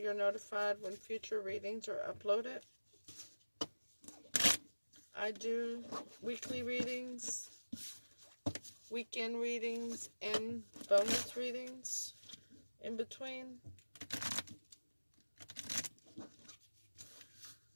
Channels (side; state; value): both; inverted; correlation -1.00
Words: notified when future readings are uploaded. I do weekly readings, weekend readings, and bonus readings in between.